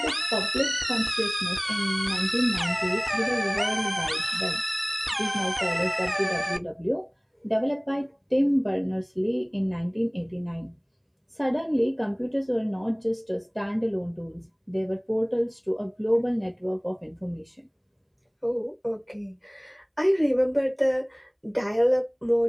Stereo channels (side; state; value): both; identical; correlation 1.00